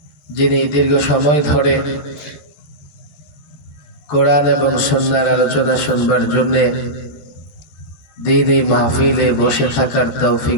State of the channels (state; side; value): late; right; 13 ms